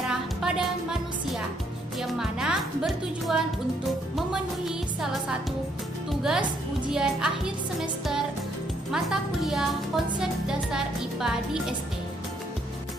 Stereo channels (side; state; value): both; normal; correlation 0.71